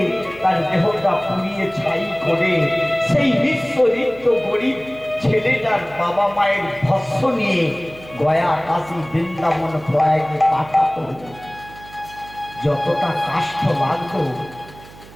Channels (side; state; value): right; noise; hum, 20 dB below the sound